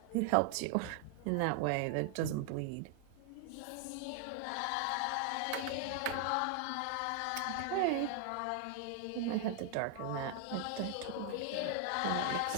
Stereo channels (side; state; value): both; different; correlation 0.00